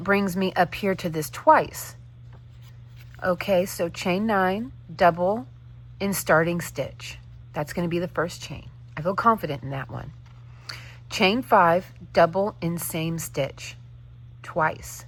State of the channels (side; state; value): both; identical; correlation 1.00